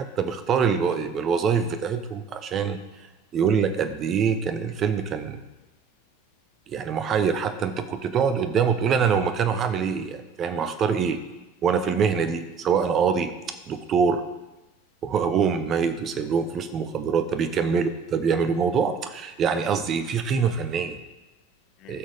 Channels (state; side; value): quieter; left; 6.1 dB